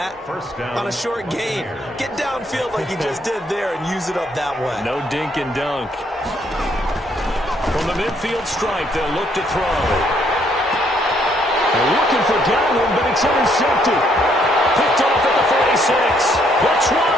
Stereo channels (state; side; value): normal; both; correlation 0.69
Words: on a short gain. Get downfield like you just did there and use it up that way. No dink and dunk. From the midfield stripe, they'll look to throw. They're looking for Godwin, but it's intercepted. Picked off at the 46, the 20,